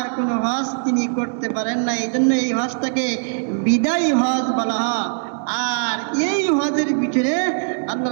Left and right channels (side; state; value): left; silent; digital silence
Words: কোনো হজ তিনি করতে পারেন না, এই জন্য এই হজটাকে বিদায়ী হজ বলা হয়। আর এই হজের ভিতরে আল্লাহ